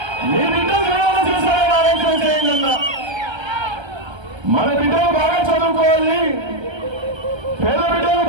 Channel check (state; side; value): late; left; 1.3 ms